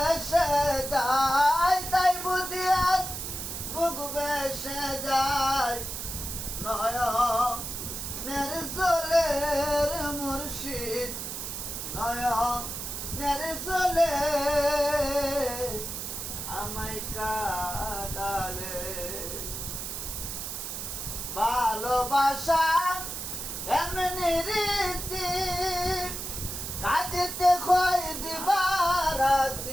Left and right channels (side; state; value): right; noise; hiss, 6 dB below the sound